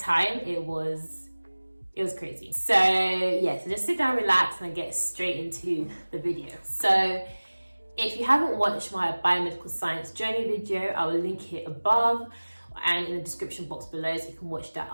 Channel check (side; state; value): both; inverted; correlation -1.00